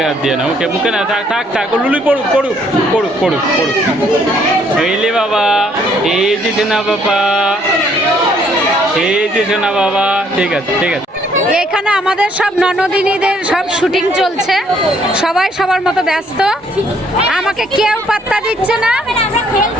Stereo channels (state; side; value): normal; both; correlation 0.66